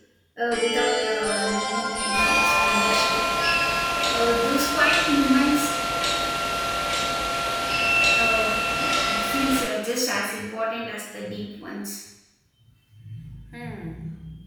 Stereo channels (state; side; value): identical; both; correlation 1.00